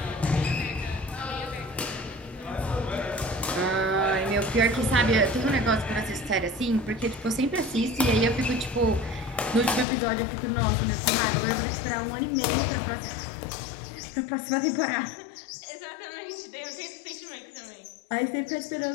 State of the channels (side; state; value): right; drops out; at 9.9 s